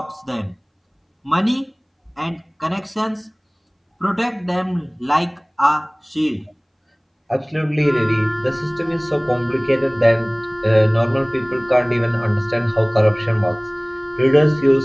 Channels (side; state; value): both; identical; correlation 1.00